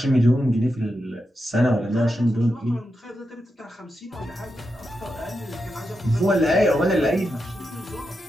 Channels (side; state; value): both; normal; correlation 0.87